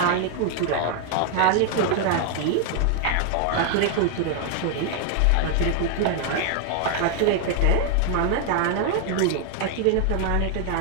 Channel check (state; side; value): different; both; correlation 0.00